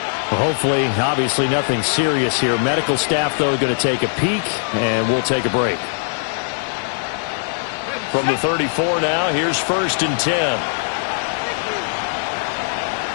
Hopefully, obviously, nothing serious here. Medical staff, though, going to take a peek, and we'll take a break. From the 34 now, here's 1st and 10.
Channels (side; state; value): right; silent; digital silence